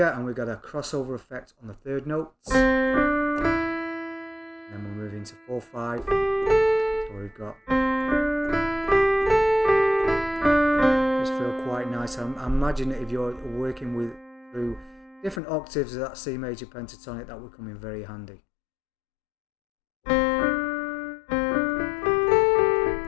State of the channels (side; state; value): right; drops out; at 15.4 s